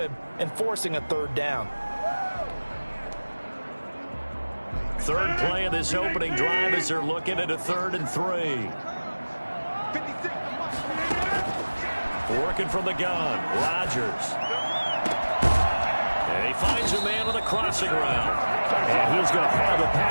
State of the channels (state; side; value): inverted; both; correlation -1.00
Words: and forcing a 3rd down. Third play of this opening drive as they're looking at a 3rd and 3. Working from the gun, Rodgers. And he finds a man on the crossing route. And he's going to have the